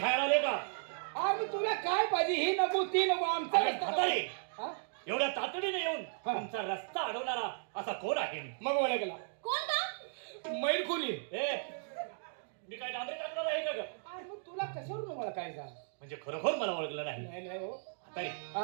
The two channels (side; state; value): left; silent; digital silence